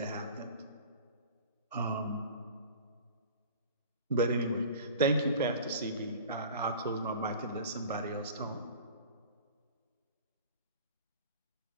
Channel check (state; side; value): inverted; both; correlation -0.40